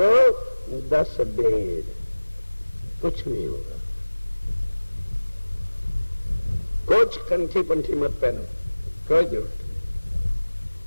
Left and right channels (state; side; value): inverted; both; correlation -1.00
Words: 10 वेद, कुछ नहीं होगा। कुछ कंठी पंठी मत पहनो, कोई जरूरत नहीं।